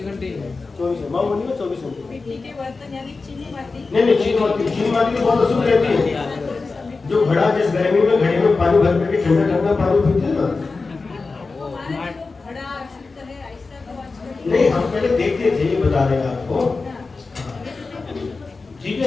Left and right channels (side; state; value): right; quieter; 4.0 dB